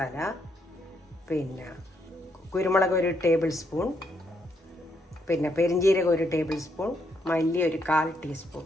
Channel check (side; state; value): both; normal; correlation 0.76